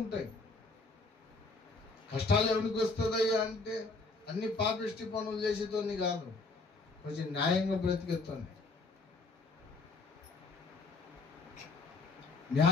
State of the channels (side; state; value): right; quieter; 3.6 dB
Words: కష్టాలు ఎవరికి వస్తుందయ్యా అంటే అన్ని పాపిష్టి పనులు చేసేతోని కాదు, కొంచెం న్యాయంగా బ్రతికేతోని,